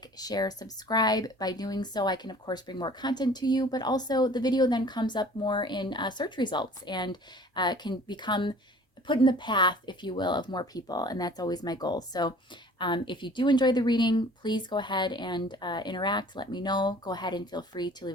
share, subscribe. By doing so, I can, of course, bring more content to you, but also the video then comes up more in search results and can become put in the path, if you will, of more people, and that's always my goal. So if you do enjoy the reading, please go ahead and interact. Let me know. Go ahead and feel free to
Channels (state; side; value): normal; both; correlation 0.49